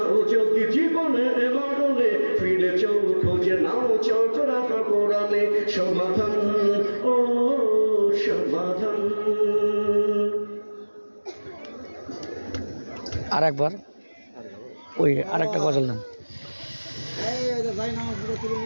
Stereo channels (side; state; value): both; inverted; correlation -1.00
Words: যদি জীবনে মরণে, ফিরে যাও খোঁজে নাও চোখ রাখো কোরআনে। সমাধান ও সমাধান। আরেকবার ওই আরেকটা গজল নাম।